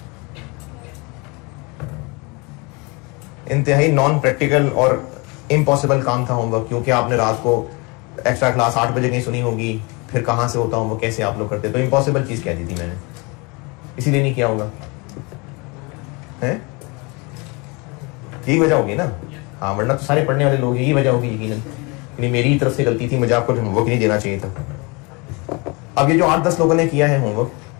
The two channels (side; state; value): right; quieter; 28.5 dB